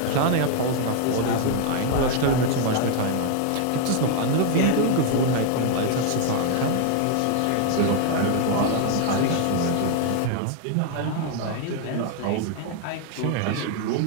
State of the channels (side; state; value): both; different; correlation 0.00